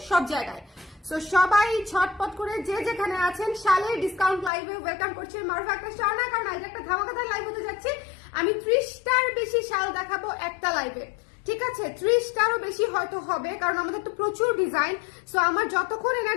সব জায়গায়। সো সবাই ঝটপট করে যে যেখানে আছেন শালের ডিসকাউন্ট লাইভে ওয়েলকাম করছি। মারুফা একটা স্টার না, কারণ আজ একটা ধামাকাদার লাইভ হতে যাচ্ছে। আমি 30টার বেশি শাল দেখাবো একটা লাইভে, ঠিক আছে? 30টারও বেশি হয়তো হবে, কারণ আমাদের তো প্রচুর ডিজাইন। সো আমার যতক্ষণ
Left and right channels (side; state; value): right; drops out; at 4.5 s